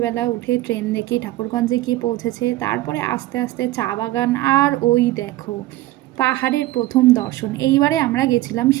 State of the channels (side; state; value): left; quieter; 16.7 dB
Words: উঠে ট্রেন দেখি ঠাকুরগঞ্জে গিয়ে পৌঁছেছে। তারপরে আস্তে আস্তে চা বাগান, আর ওই দেখো পাহাড়ের প্রথম দর্শন। এইবারে আমরা গেছিলাম